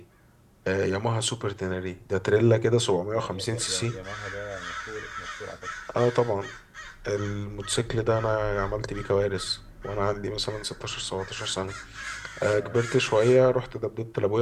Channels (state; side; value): identical; both; correlation 1.00